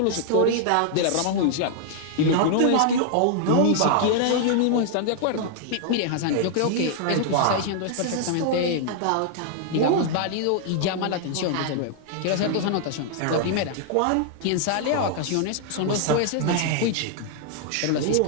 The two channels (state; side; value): different; both; correlation -0.01